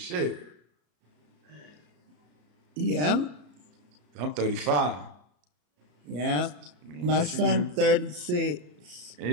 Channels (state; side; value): late; left; 34 ms